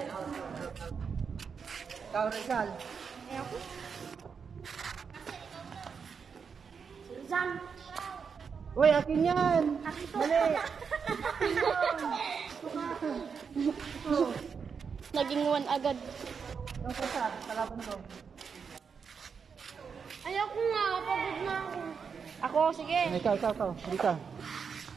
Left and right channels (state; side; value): quieter; left; 6.1 dB